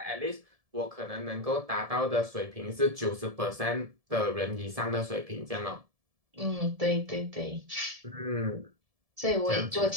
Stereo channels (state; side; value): late; left; 1.7 ms